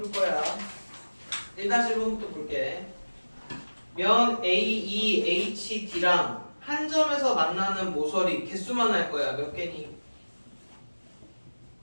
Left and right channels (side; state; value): both; inverted; correlation -1.00